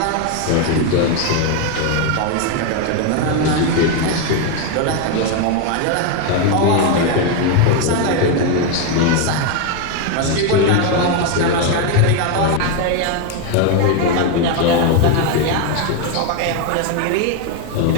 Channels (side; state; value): both; different; correlation 0.01